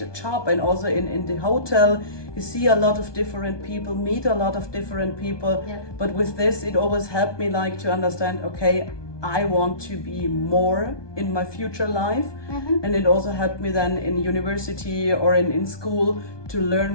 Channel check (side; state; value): right; late; 1.2 ms